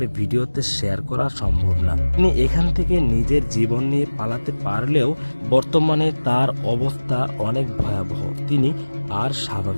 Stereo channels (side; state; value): both; inverted; correlation -1.00